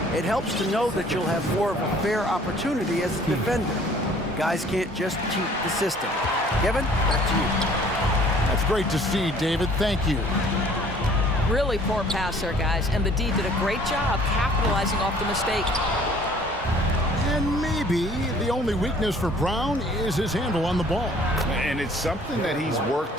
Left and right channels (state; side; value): normal; both; correlation 0.55